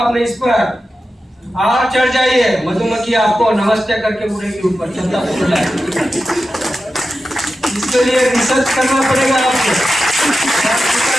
इस पर और चढ़ जाइए, मधुमक्खी आपको नमस्ते करके उड़ेगी ऊपर, छत्ता फूल है। इसके लिए रिसर्च करना पड़ेगा आपको।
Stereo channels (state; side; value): normal; both; correlation 0.92